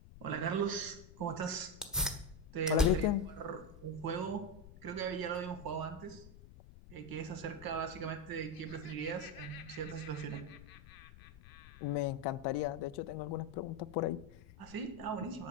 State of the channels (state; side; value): noise; left; rumble, 18 dB below the sound